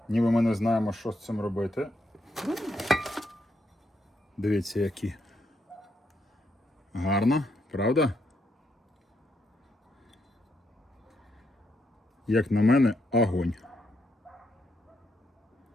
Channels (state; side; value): normal; both; correlation 0.78